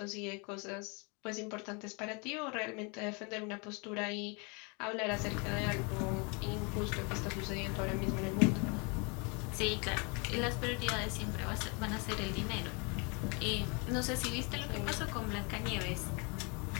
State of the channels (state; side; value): quieter; right; 32.1 dB